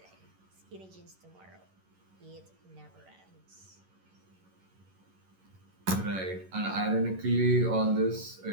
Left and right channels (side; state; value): left; late; 11 ms